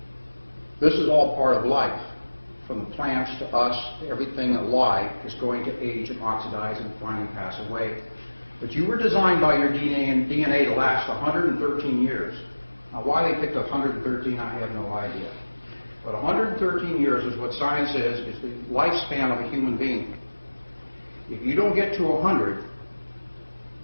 This is all part of life. From the plants to us, everything alive is going to age and oxidize and finally pass away. But you were designed by your DNA to last 113 years. Now, why they picked 113, I have no idea. But 113 years is what science says is the lifespan of a human being. If you don't get to 100,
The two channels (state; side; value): inverted; both; correlation -1.00